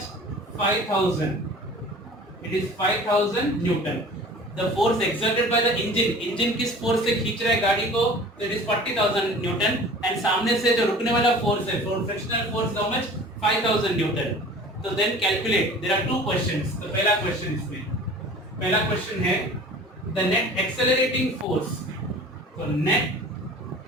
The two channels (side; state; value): both; normal; correlation 0.43